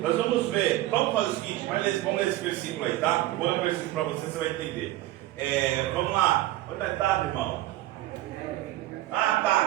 nós vamos ver. Vamos fazer o seguinte: vamos ler esse versículo aí, tá? Vou dar um versículo para você vai entender. Vamos lá. Onde está, irmão? Ah,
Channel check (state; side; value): quieter; left; 15.8 dB